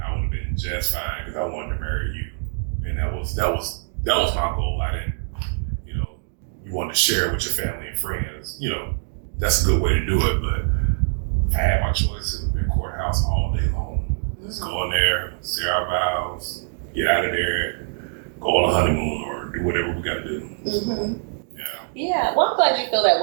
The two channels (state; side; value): silent; left; digital silence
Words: been just fine because I wanted to marry you, and that was my goal. I didn't, you want to share it with your family and friends. That's a good way to do it. But if I had my choice, it would have been courthouse all day long. Let's go in there, say our vows, get out of there, go on a honeymoon or do whatever we got to do. Mm-hmm. Yeah. Yeah. Well, I'm glad you feel that